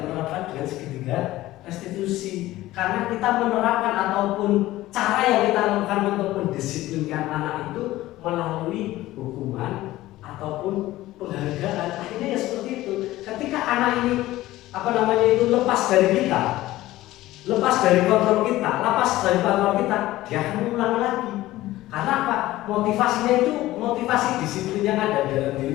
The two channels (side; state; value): right; quieter; 16.4 dB